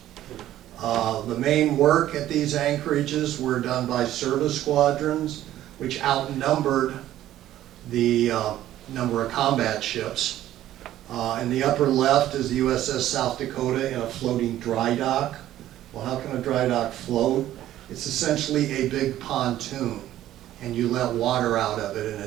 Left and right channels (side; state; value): left; quieter; 13.2 dB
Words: The main work at these anchorages were done by service squadrons, which outnumbered the number of combat ships. In the upper left is the USS South Dakota in a floating dry dock. Well, how can a dry dock float? It's essentially a big pontoon, and you let water out of it, and